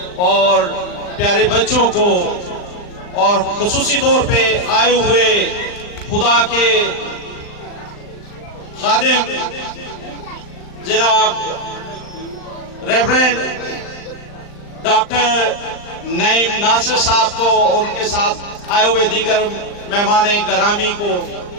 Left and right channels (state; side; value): late; right; 39 ms